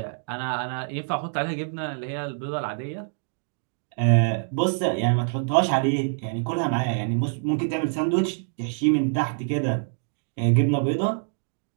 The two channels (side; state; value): left; silent; digital silence